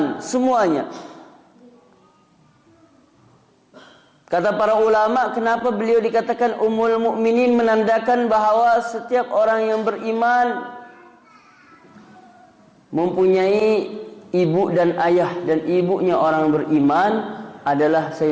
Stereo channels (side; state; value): both; identical; correlation 1.00